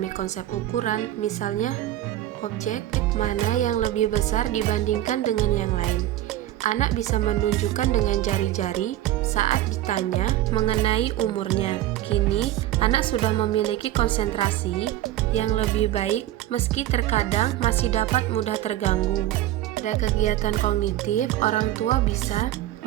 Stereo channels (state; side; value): quieter; left; 14.0 dB